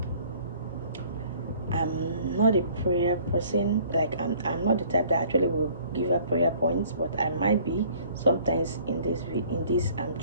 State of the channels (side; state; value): both; inverted; correlation -0.55